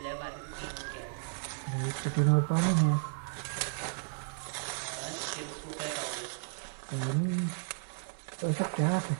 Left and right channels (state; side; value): silent; left; digital silence